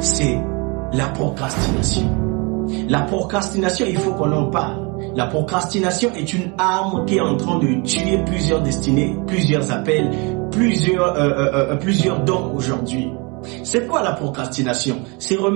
la procrastination. La procrastination, il faut qu'on en parle. La procrastination est une arme qui est en train de tuer plusieurs destinées, plusieurs appels, plusieurs dons aujourd'hui. C'est quoi la procrastination? C'est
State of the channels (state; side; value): quieter; left; 29.8 dB